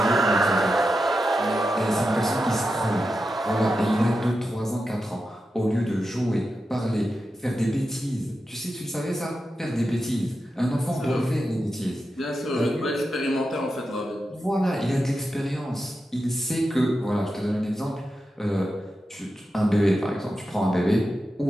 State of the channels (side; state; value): both; normal; correlation 0.90